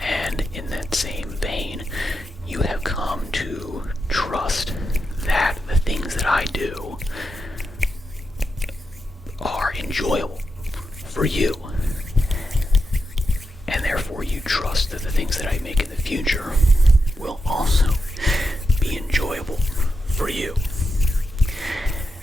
And in that same vein, you have come to trust that the things that I do are enjoyable for you. And therefore you trust that the things that I make in the future will also be enjoyable for you.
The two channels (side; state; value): both; normal; correlation 0.87